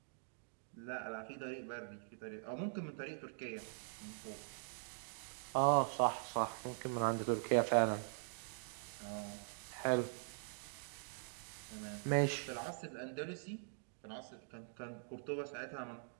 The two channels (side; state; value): left; silent; digital silence